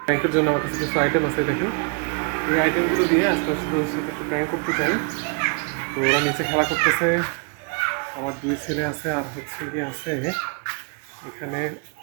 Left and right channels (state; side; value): quieter; left; 37.7 dB